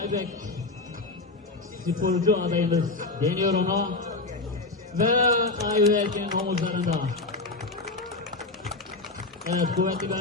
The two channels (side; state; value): right; quieter; 3.3 dB